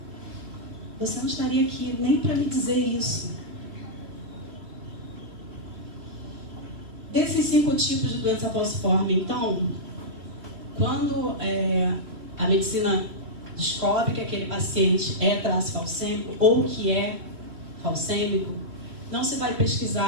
você não estaria aqui nem para me dizer isso. Desses 5 tipos de doença falciforme, então, quando a medicina descobre que aquele paciente é traço falcêmico ou que é falcêmico, não se vai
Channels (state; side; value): late; left; 3.0 ms